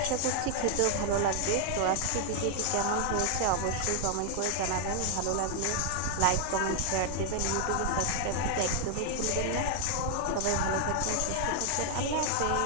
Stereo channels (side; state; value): both; different; correlation 0.00